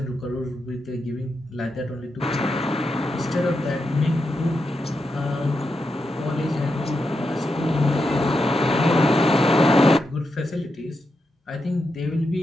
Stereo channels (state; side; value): normal; both; correlation 0.85